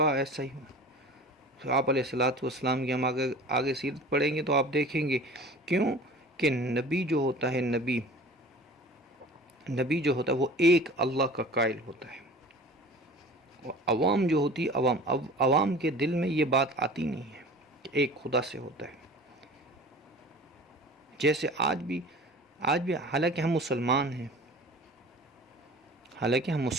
ایسا ہی ہو. آپ علیہ السلام کی ہم آگے سیرت پڑھیں گے تو آپ دیکھیں گے کیوں کہ نبی جو ہوتا ہے, نبی جو ہوتا ہے وہ ایک اللہ کا قائل ہوتا ہے. عوام جو ہوتی ہے, عوام کے دل میں یہ بات آتی نہیں ہے کہ ایک خدا سے ہوتا ہے. جیسے آج بھی آج بھی حالانکہ ہم مسلمان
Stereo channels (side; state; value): both; normal; correlation 0.41